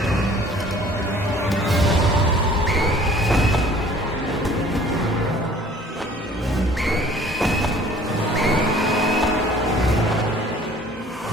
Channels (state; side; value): normal; both; correlation 0.52